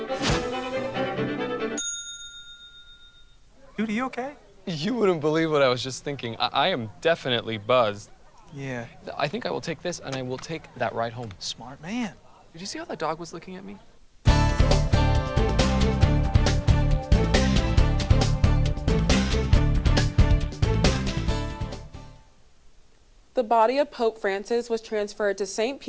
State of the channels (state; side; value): identical; both; correlation 1.00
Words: Dude, are you okay? You wouldn't believe what I was just thinking. I am definitely buzzed. Yeah. I think I will take this, and I will take that ride home. Smart man. Did you see how that dog was looking at me? The body of Pope Francis was transferred to St.